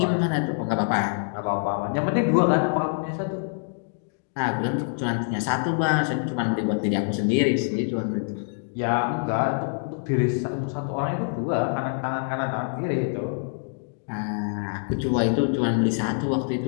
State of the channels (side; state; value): right; silent; digital silence